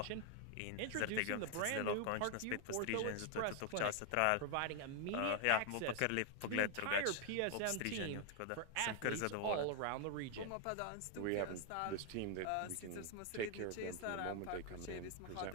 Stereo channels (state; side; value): different; both; correlation 0.00